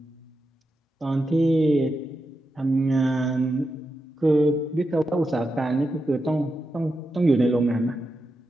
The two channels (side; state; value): both; normal; correlation 0.88